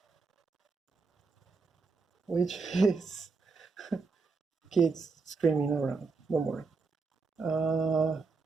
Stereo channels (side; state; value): left; quieter; 4.4 dB